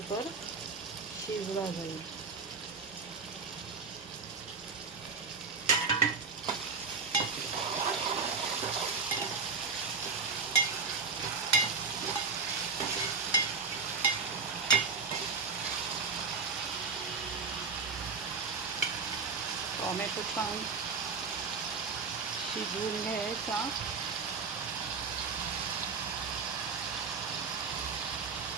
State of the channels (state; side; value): quieter; left; 4.9 dB